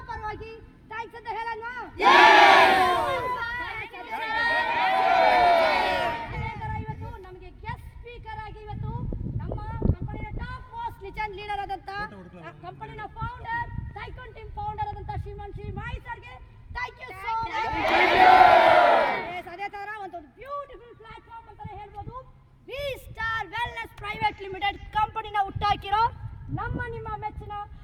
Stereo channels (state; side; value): identical; both; correlation 1.00